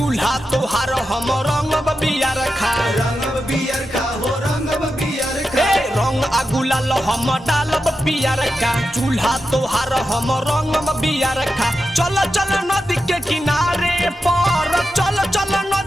तोहार हम रंगब बियर खा रंगब बियर का हो रंगब बियर का ए रंग अगुलाल हम डालब पियर का चूल्हा तोहार हम रंगब बियर खा चल चल नदी के किनारे पर चल चल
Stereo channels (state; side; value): normal; both; correlation 0.89